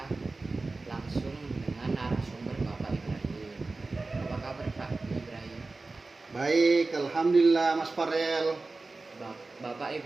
langsung dengan narasumber Bapak Ibrahim. Apa kabar Pak Ibrahim? Baik, alhamdulillah Mas Farel. Bapak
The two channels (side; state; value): left; quieter; 3.5 dB